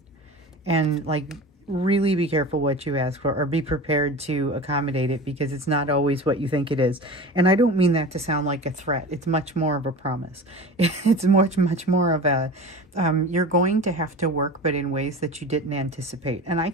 And like, really be careful what you ask for, or be prepared to accommodate it, because it's not always what you think it is. And I don't mean that to sound like a threat. It's much more of a promise. It's much more of a, you're going to have to work, but in ways that you didn't anticipate. And I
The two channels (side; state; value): both; normal; correlation 0.34